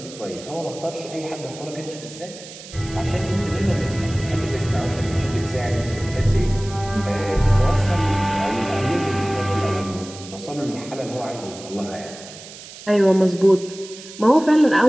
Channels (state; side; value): noise; right; hiss, 16 dB below the sound